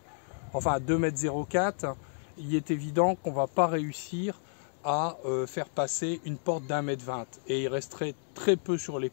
enfin 2,04 m, il est évident qu'on ne va pas réussir à faire passer une porte d'1,20 m et il resterait très peu sur les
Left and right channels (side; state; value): right; silent; digital silence